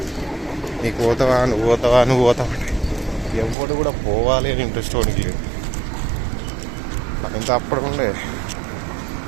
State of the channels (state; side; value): drops out; left; at 3.6 s